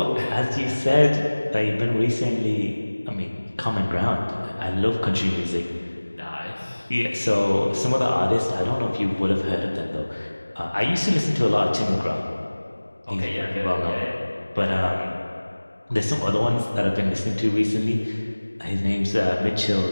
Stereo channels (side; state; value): both; inverted; correlation -1.00